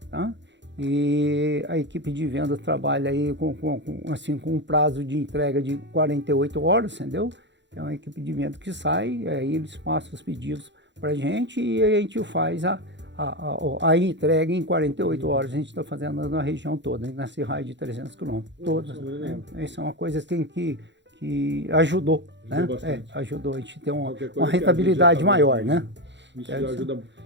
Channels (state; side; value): late; left; 0.52 ms